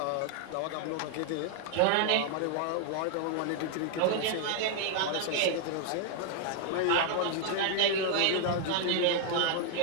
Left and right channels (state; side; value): different; both; correlation 0.00